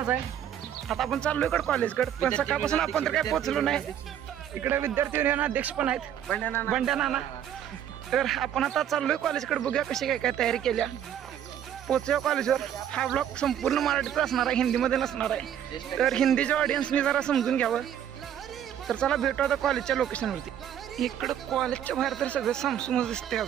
आहे। आता आपण चाललो इकडे कॉलेजकडे, पण सकाळपासून आपण तर काही पोहोचलो नाही। इकडे विद्यार्थी युनियन अध्यक्ष पण आहेत, बंड्या नाना। तर आपण आता चाललोय कॉलेजकडे, बघूया कशी काय काय तयारी केल्या। पोहोचूया कॉलेजवर। हा ब्लॉग संपूर्ण मराठीत असणार आहे, हिंदीमध्ये नसणार आहे। तर हिंदीच्या ऑडियन्सनी जरा समजून घ्यावं। तर चला भेटू आता कॉलेजच्या लोकेशनवरती। इकडं कॉलेजच्या बाहेर तर सगळं सामसूमच दिसते।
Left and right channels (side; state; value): left; quieter; 10.0 dB